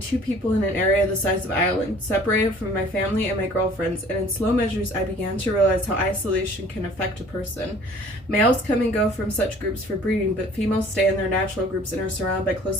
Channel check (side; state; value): both; normal; correlation 0.52